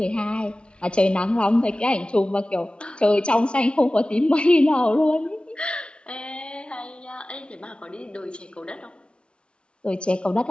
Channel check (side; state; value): right; late; 0.057 ms